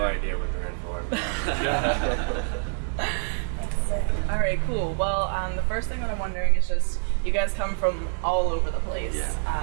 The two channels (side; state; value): left; silent; 61 dB below the other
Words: idea what they're in for. All right, cool. Well, the first thing that I'm wondering is just, you guys come from all over the place.